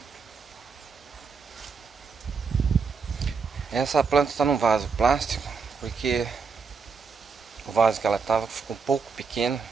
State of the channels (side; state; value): left; quieter; 5.2 dB